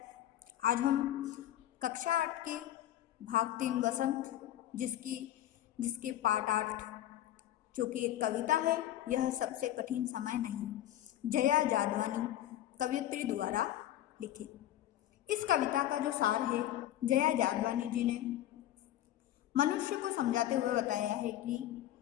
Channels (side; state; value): right; quieter; 12.9 dB